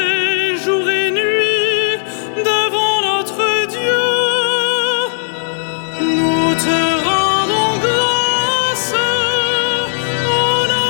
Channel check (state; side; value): silent; right; digital silence